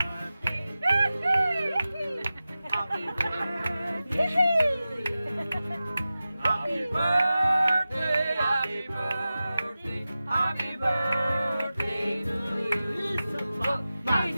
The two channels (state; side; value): inverted; both; correlation -0.95